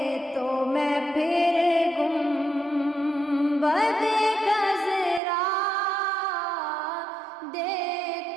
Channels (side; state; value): left; drops out; at 5.2 s